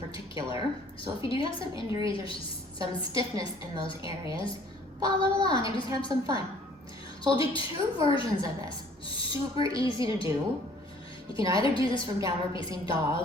So if you do have some injuries or some stiffness in those areas, follow along and just have some fun. So I'll do two versions of this, super easy to do. You can either do this from downward facing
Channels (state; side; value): normal; both; correlation 0.56